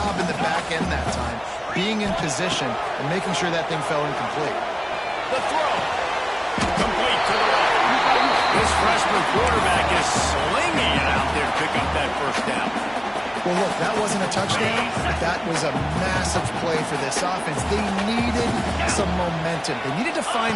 in the back end that time, being in position and making sure that thing fell incomplete. The throw. Complete to the right. This freshman quarterback is slinging it out there to pick up that first down. Well, look, that wasn't a touchdown. That was a massive play for this offense. They needed some momentum. They needed to find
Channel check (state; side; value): identical; both; correlation 1.00